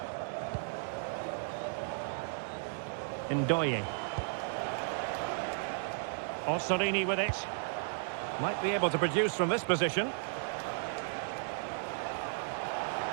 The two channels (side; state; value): left; silent; digital silence